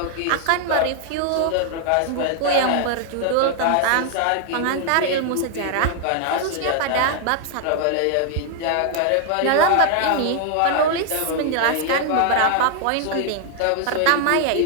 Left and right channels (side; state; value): both; different; correlation 0.00